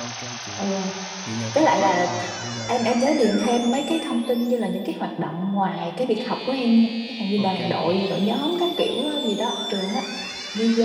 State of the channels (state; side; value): identical; both; correlation 1.00